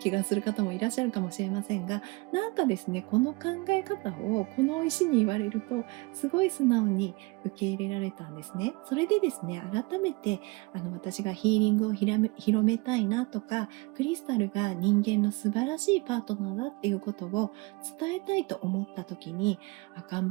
がする方もいらっしゃるかもしれませんが、なんかですね、この考え方をこの石に言われると、すごい素直に受け入れられたんですね。それでですね、改めて、私がヒーリングを広めたいなとか、クリスタルが人間の素晴らしいパートナーだっていうことを伝えたいと思った時に、頑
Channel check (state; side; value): quieter; left; 25.7 dB